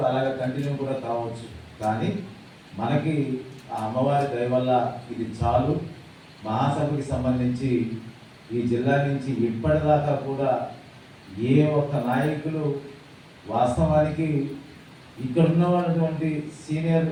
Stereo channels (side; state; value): both; identical; correlation 1.00